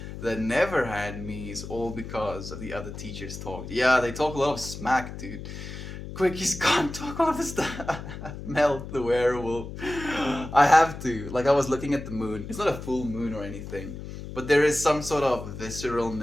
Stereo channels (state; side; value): noise; left; hum, 10 dB below the sound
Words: that never had me is all because of the other teachers talked. Yeah, they talk a lot of smack, dude. Quickies can't talk all of this stuff. Melt the werewolf. I have to. Like, I was looking at the moon. It's not a full moon or anything, but there is some sort of